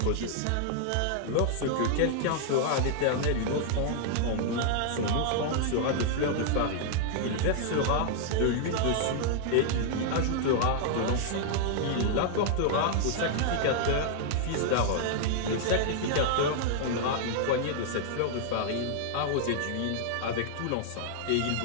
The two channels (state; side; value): different; both; correlation -0.01